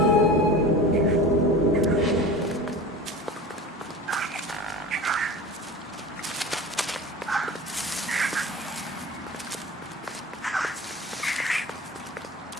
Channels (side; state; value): both; normal; correlation 0.34